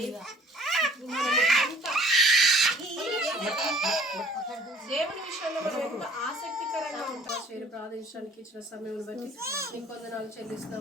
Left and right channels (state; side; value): normal; both; correlation 0.53